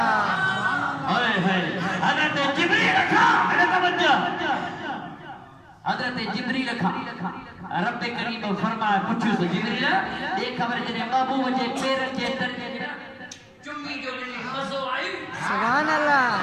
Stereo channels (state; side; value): identical; both; correlation 1.00